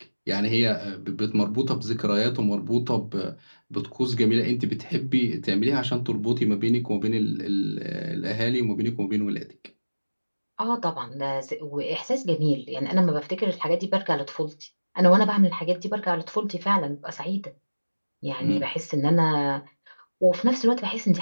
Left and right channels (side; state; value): both; inverted; correlation -1.00